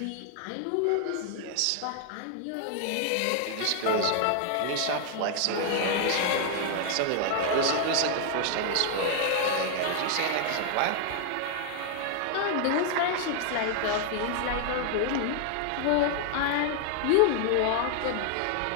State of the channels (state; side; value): different; both; correlation 0.00